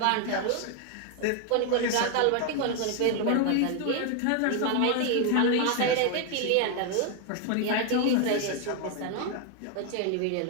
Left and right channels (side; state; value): both; different; correlation 0.01